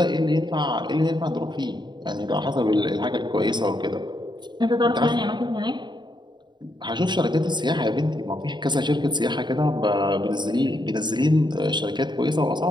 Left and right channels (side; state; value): left; late; 0.22 ms